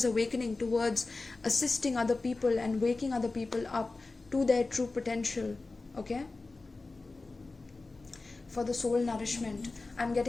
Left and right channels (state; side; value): quieter; right; 3.5 dB